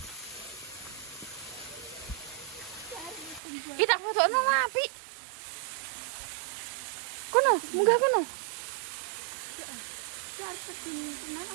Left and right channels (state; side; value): drops out; left; at 3.4 s